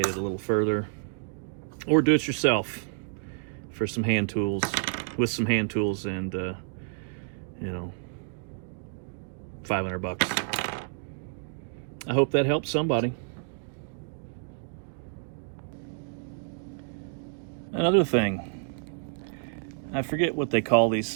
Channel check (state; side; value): silent; left; digital silence